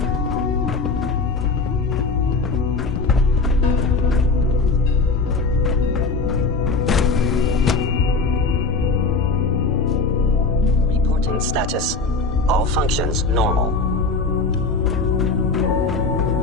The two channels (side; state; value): right; quieter; 3.9 dB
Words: Reporting status. All functions normal.